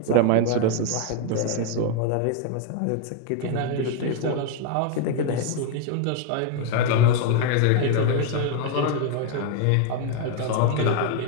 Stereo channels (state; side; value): different; both; correlation 0.01